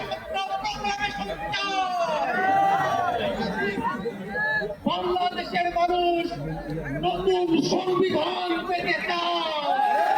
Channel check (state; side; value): identical; both; correlation 1.00